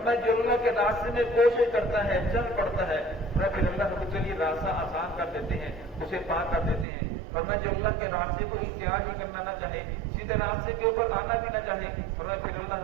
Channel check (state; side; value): drops out; left; at 6.9 s